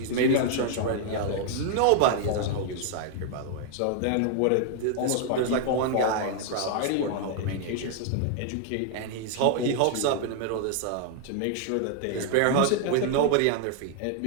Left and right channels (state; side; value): different; both; correlation 0.00